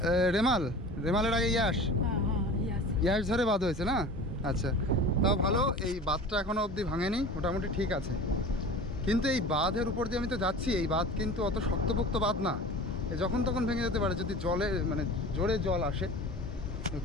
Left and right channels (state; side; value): normal; both; correlation 0.37